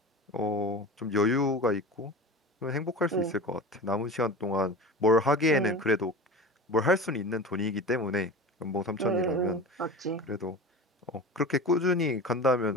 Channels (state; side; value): normal; both; correlation 0.32